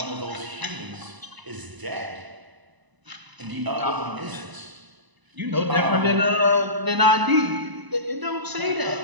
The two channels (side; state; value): left; late; 1.0 ms